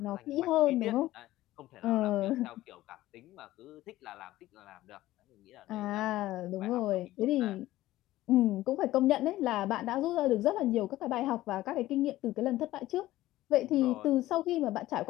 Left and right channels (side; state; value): right; quieter; 15.9 dB